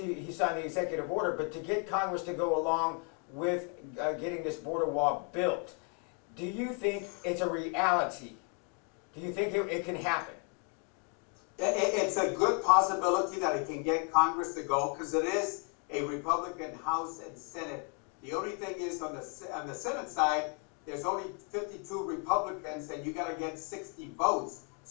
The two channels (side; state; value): right; quieter; 35.3 dB